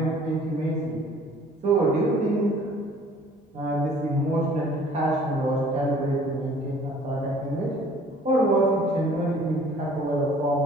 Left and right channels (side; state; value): both; normal; correlation 0.53